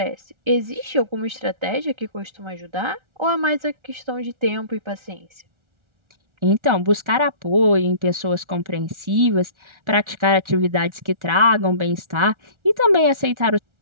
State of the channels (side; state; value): left; late; 1.4 ms